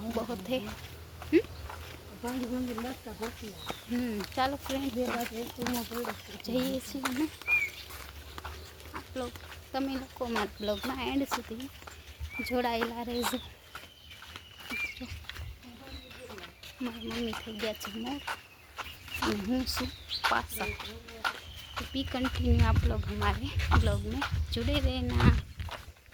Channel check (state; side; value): identical; both; correlation 1.00